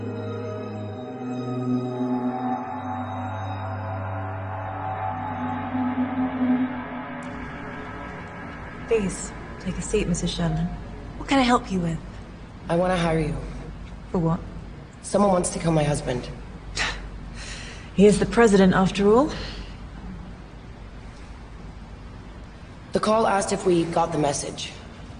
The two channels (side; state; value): both; identical; correlation 1.00